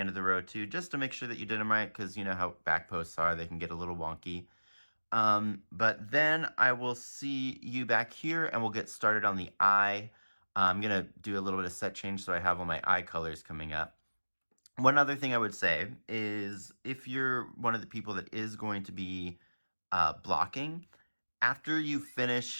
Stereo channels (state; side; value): inverted; both; correlation -1.00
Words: of the row too, just to make sure that you did them right, because you know how back posts are. They can get a little wonky. But then I will see you back here and we'll get started on the eye. I'm going to do a little bit of set change so I have all my eye colors coming up. One other thing I would say is if you're one of the people that is going to be blocking, after you